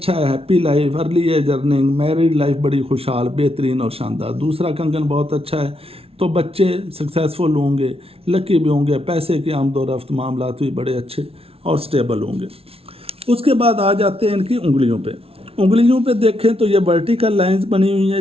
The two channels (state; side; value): late; left; 0.28 ms